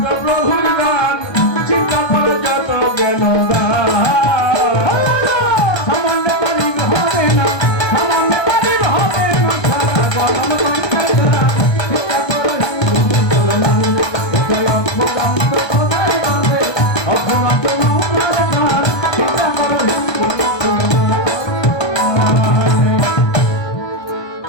প্রভুর গান চিন্তা করে যত জ্ঞান সামান্য পারি হবে না সামান্য পারি হবে না সারা গরম চিন্তা করে হিন্দু মুসলমান এটাই অপরান্ত অপরান্ত চিন্তা করে হিন্দু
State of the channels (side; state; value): right; late; 1.2 ms